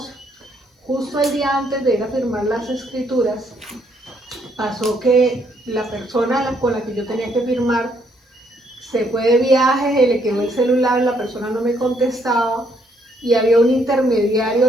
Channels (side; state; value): both; normal; correlation 0.70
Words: Justo el día antes de ir a firmar las escrituras, pasó que la persona con la que yo tenía que firmar se fue de viaje, le quedó el celular, la persona no me contestaba y había un